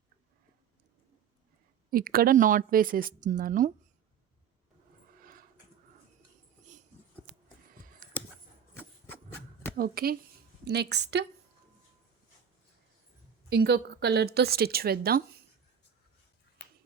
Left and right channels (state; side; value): quieter; left; 7.9 dB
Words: ఇక్కడ నాట్ వేసేస్తున్నాను. ఓకే. నెక్స్ట్ ఇంకొక కలర్‌తో స్టిచ్ వేద్దాం.